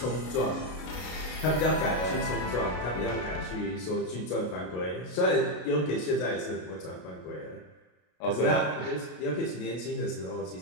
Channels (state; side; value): late; right; 33 ms